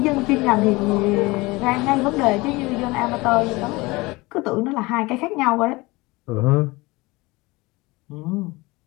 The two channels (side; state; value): right; quieter; 22.7 dB